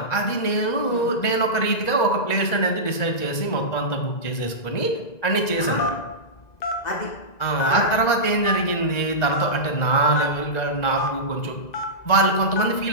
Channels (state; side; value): late; right; 1.9 ms